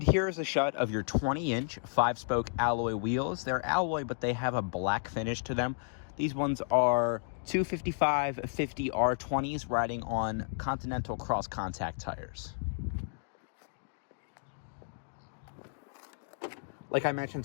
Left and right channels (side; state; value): right; silent; digital silence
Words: here's a shot of your 20-inch 5-spoke alloy wheels. They're alloy, but they have a black finish to them. These ones are 255/50 R20s riding on Continental cross contact tires. Like I